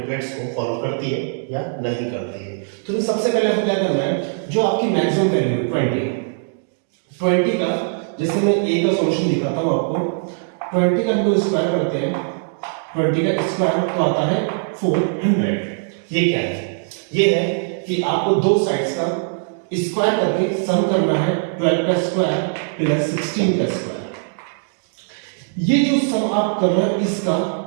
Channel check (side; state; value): left; silent; digital silence